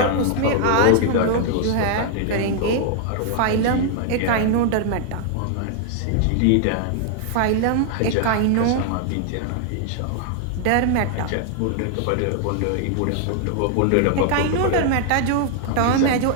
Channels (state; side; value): different; both; correlation 0.00